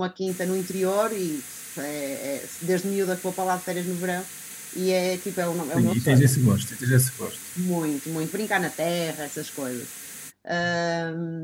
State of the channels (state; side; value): identical; both; correlation 1.00